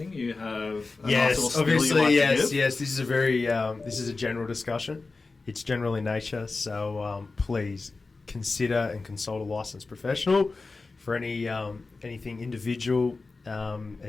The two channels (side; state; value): right; quieter; 3.8 dB